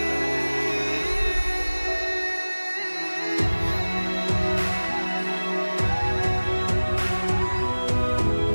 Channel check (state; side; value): inverted; both; correlation -1.00